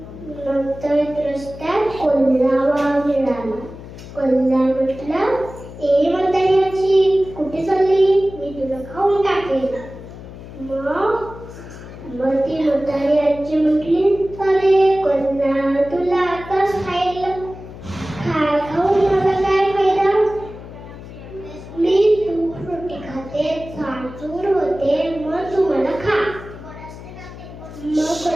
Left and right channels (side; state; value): left; noise; hum, 14 dB below the sound